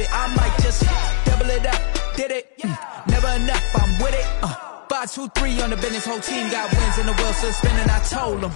I might just double it up. Did it? Never enough, I'm with it. 5, 2, 3 on the business. Whole team got wins and the wheels still spinning. I told them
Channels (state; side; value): silent; right; 58 dB below the other